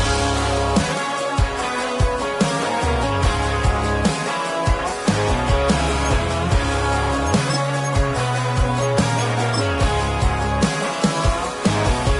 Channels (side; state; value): both; identical; correlation 1.00